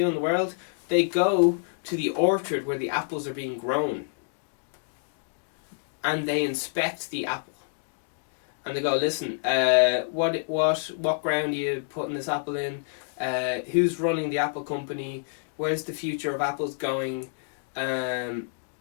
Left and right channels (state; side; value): silent; right; digital silence